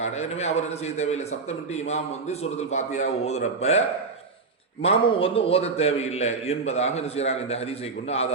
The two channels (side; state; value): left; quieter; 4.3 dB